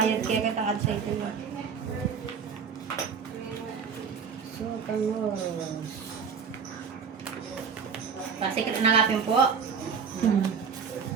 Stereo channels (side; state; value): left; quieter; 6.4 dB